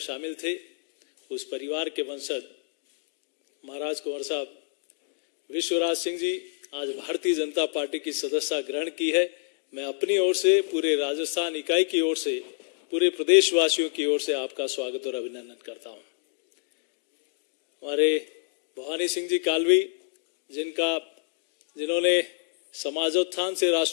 थे। उस परिवार के वंशज महाराज कुंवर साहब विश्वराज सिंह जी आज भारतीय जनता पार्टी की सदस्यता ग्रहण की है। मैं अपनी ओर से, पूरे राजस्थान इकाई की ओर से, पूरे प्रदेशवासियों की ओर से आपका स्वागत और अभिनंदन करता हूं। हमारे भवानी सिंह जी कालवी जिन्होंने समाजोत्थान से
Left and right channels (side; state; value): right; silent; digital silence